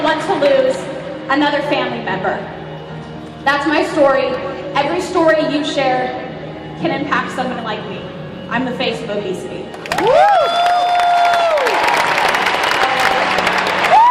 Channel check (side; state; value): both; identical; correlation 1.00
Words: want to lose another family member. That's my story. Every story you share can impact someone like me. I'm the face of obesity.